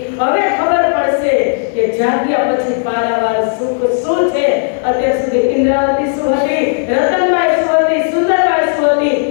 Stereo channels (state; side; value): silent; right; digital silence